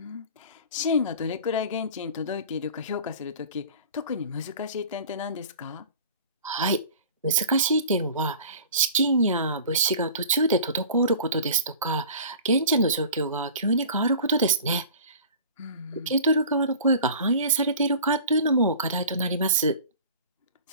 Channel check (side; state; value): both; inverted; correlation -0.42